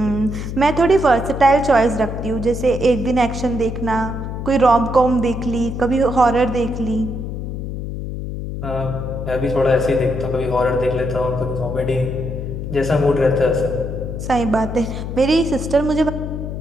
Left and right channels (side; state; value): left; noise; hum, 6 dB below the sound